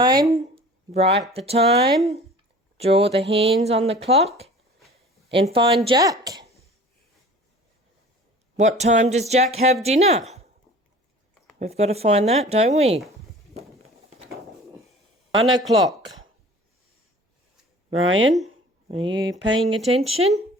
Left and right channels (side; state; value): both; normal; correlation 0.44